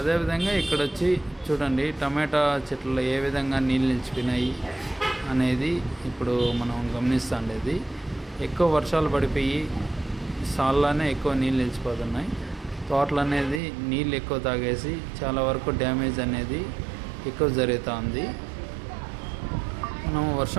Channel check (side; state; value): left; drops out; at 13.6 s